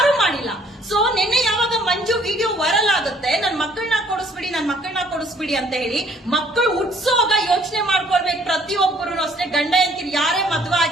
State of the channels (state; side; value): normal; both; correlation 0.61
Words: ಮಾಡಿಲ್ಲ. ಸೊ ನಿನ್ನೆ ಯಾವಾಗ ಮಂಜು ವಿಡಿಯೋ ವೈರಲ್ ಆಗುತ್ತೆ, ನನ್ ಮಕ್ಕಳನ್ನ ಕೊಡಿಸ್ಬಿಡಿ ಅಂತ ಹೇಳಿ, ಮಕ್ಕಳು ಹುಟ್ಸೋಗ ಯೋಚನೆ ಮಾಡ್ಕೊಳ್ಬೇಕು ಪ್ರತಿಯೊಬ್ಬರು ಅಷ್ಟೇ. ಗಂಡ ಹೆಂಡತಿ ಯಾರೇ ಮದುವೆ